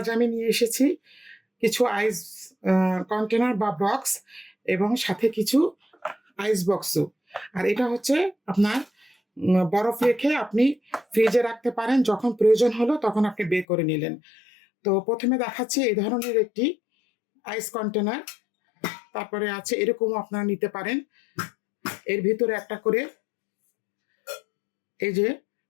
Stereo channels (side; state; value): right; drops out; at 13.7 s